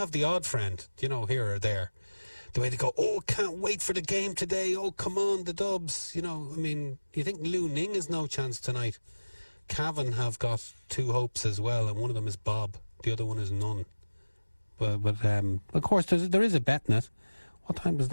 the odd friend, here or there. The way they go, oh, can't wait for the game today. Oh, come on, the Dubs. You think Lou Ning has no chance tonight. Cavan have got 2 hopes as well, and one of them is Bob. The other one is none. But of course, there is a bet in it. What time does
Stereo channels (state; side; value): inverted; both; correlation -1.00